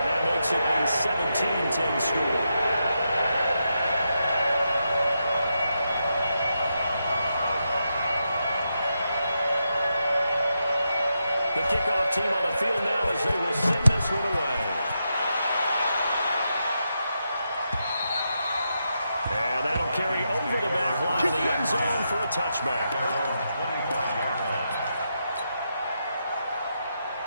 that makes it a 17-10 score. The kickoff team on the field now as they will send this one away. And that'll carry over the back line of the end zone for a touchback.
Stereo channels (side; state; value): both; inverted; correlation -0.85